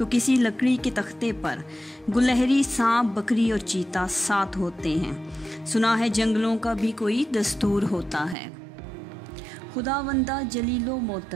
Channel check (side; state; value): left; drops out; at 8.3 s